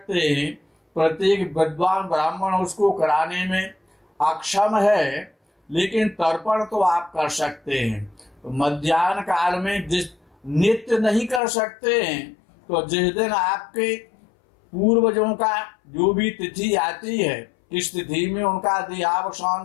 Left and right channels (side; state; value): right; drops out; at 11.4 s